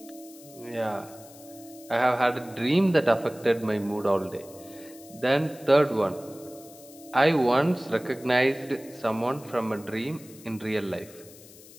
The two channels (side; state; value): left; noise; hiss, 21 dB below the sound